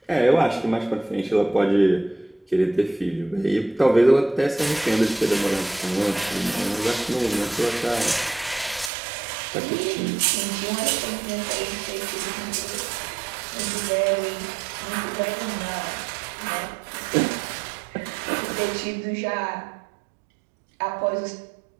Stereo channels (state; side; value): drops out; left; at 8.9 s